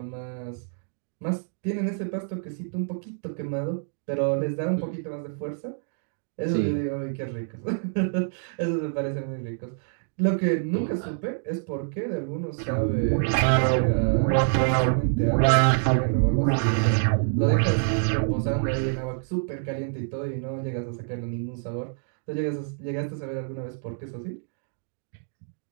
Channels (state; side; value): silent; left; digital silence